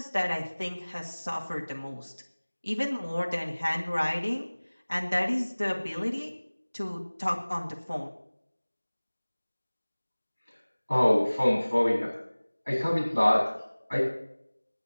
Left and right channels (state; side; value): inverted; both; correlation -1.00